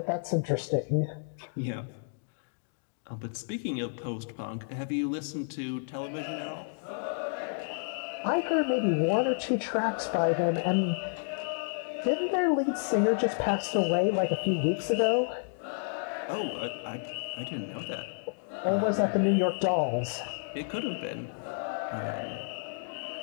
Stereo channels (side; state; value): right; silent; digital silence